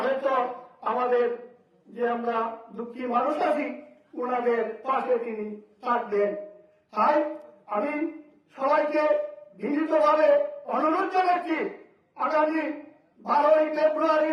হয়তো আমাদের যে আমরা দুঃখী মানুষ আছি, ওনাদের পাশে তিনি থাকবেন। তাই আমি সবাইকে বিনীতভাবে অনুরোধ জানাচ্ছি, আগামী 12ই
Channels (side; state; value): both; identical; correlation 1.00